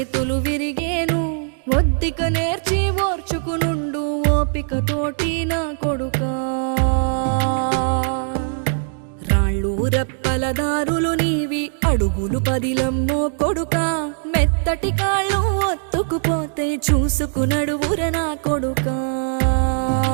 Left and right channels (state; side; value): silent; left; digital silence